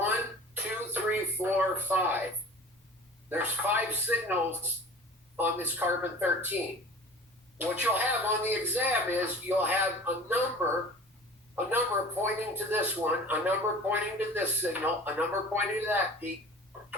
2, 3, 4, 5. There's 5 signals on this carbon-13. What you'll have on the exam is you'll have a number pointing to this one, a number pointing to this signal, a number pointing to that peak,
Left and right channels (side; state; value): both; normal; correlation 0.42